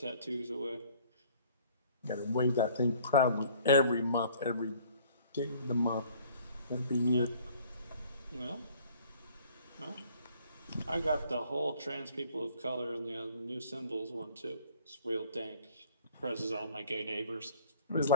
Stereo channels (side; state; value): both; inverted; correlation -0.55